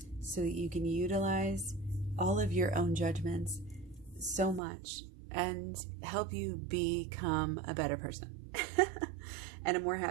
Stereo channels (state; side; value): drops out; left; at 4.6 s